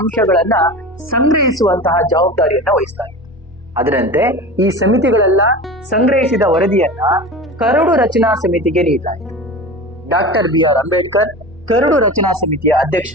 ಸಂಗ್ರಹಿಸುವಂತಹ ಜವಾಬ್ದಾರಿಯನ್ನ ವಹಿಸಲಾಗಿತ್ತು. ಅದರಂತೆ ಈ ಸಮಿತಿಗಳೆಲ್ಲ ಸಂಗ್ರಹಿಸಿದ ವರದಿಯನ್ನ ಕರಡು ರಚನಾ ಸಮಿತಿಗೆ ನೀಡಲಾಯಿತು. ಡಾಕ್ಟರ್ BR ಅಂಬೇಡ್ಕರ್ ಕರಡು ರಚನಾ ಸಮಿತಿಯ ಅಧ್ಯಕ್ಷ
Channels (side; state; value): both; normal; correlation 0.31